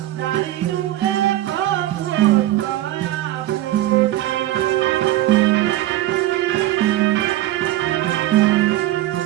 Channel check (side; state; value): left; quieter; 14.9 dB